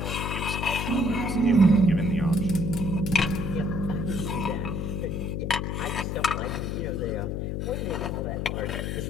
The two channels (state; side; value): noise; left; hum, 2 dB below the sound